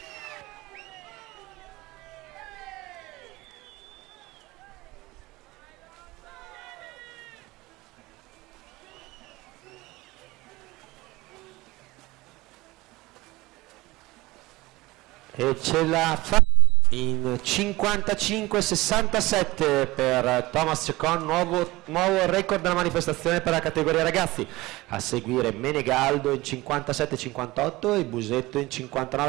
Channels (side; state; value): left; quieter; 20.8 dB